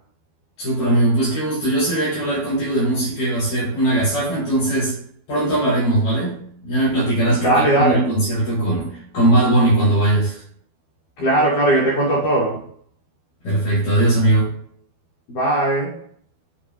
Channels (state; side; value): late; right; 12 ms